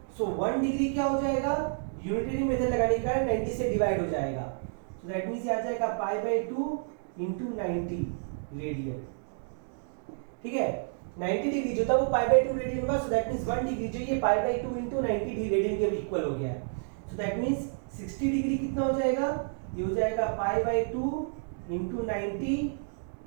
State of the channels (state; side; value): silent; left; digital silence